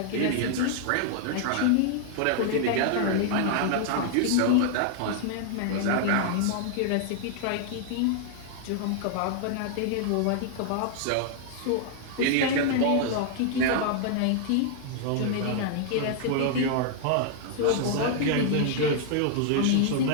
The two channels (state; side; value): different; both; correlation -0.01